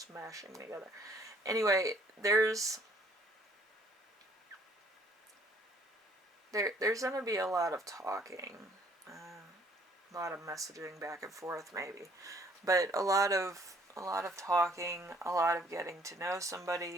together. Anyway, there's going to be a lot of talking, a lot of messaging back and forth, maybe, but a lot of talking, a lot of getting to know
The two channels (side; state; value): both; normal; correlation 0.61